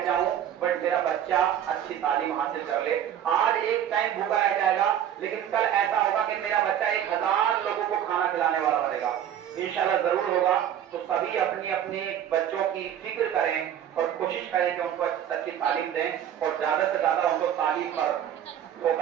جاؤں بٹ میرا بچہ اچھی تعلیم حاصل کر لے. آج ایک ٹائم بھوکا رہ جائے گا لیکن کل ایسا ہوگا کہ میرا بچہ 1000 لوگوں کو کھانا کھلانے والا بنے گا. انشاءاللہ ضرور ہوگا. تو سبھی اپنی اپنے بچوں کی فکر کریں اور کوشش کریں کہ ان کو اچھی تعلیم دیں اور زیادہ سے زیادہ ان کو تعلیم پر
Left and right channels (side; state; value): left; quieter; 10.1 dB